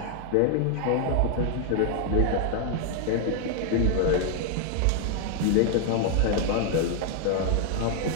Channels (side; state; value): both; different; correlation 0.00